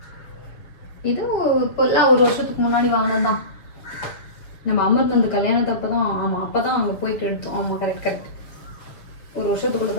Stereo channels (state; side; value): late; right; 7.0 ms